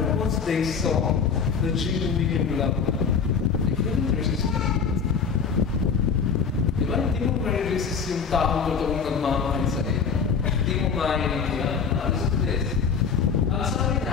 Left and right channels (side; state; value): right; quieter; 6.1 dB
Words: once they saw the genuine love, they couldn't resist it. Diba? Hindi mo ma-resist yung taong totoong nagmamahal sa iyo. Hindi mo maintindihan. Listen to this. Ang sabi